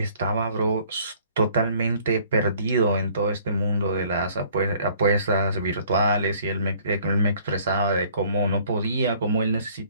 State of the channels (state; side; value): inverted; both; correlation -0.57